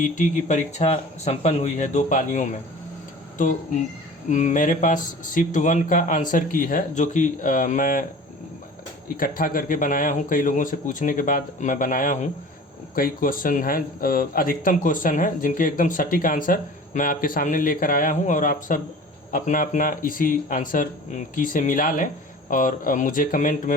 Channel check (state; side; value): normal; both; correlation 0.41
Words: की परीक्षा संपन्न हुई है 2 पालियों में। तो मेरे पास शिफ्ट 1 का आंसर की है, जो कि मैं इकट्ठा करके बनाया हूँ। कई लोगों से पूछने के बाद मैं बनाया हूँ। कई क्वेश्चन हैं, अधिकतम क्वेश्चन हैं जिनके एकदम सटीक आंसर मैं आपके सामने लेकर आया हूँ। और आप सब अपना अपना इसी आंसर की से मिला लें और मुझे कमेंट